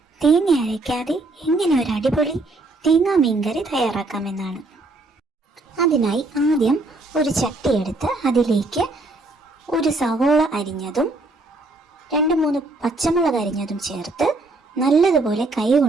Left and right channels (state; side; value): quieter; left; 3.0 dB